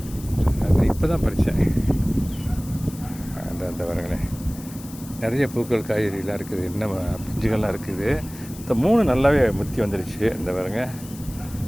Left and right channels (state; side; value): noise; left; hiss, 17 dB below the sound